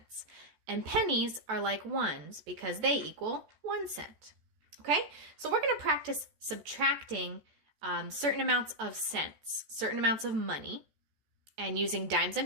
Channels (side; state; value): left; late; 14 ms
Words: And pennies are like ones because they equal 1 cent. Okay? So we're going to practice subtracting certain amounts of cents, certain amounts of money, and using dimes